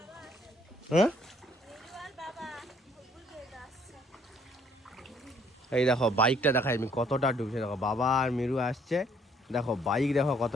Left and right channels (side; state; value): both; normal; correlation 0.63